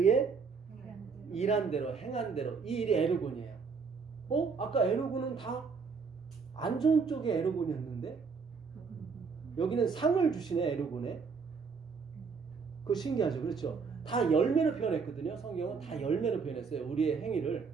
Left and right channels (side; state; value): left; quieter; 5.3 dB